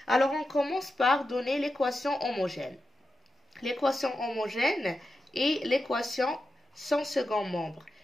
Alors, on commence par donner l'équation homogène. L'équation homogène est l'équation sans second membre.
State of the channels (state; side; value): normal; both; correlation 0.90